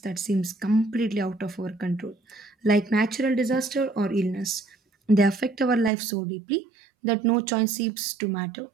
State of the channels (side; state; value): left; drops out; at 5.9 s